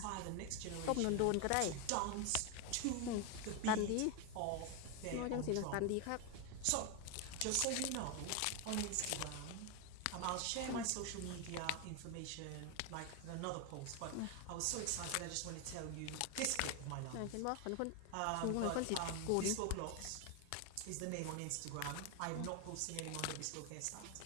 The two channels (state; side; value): different; both; correlation 0.01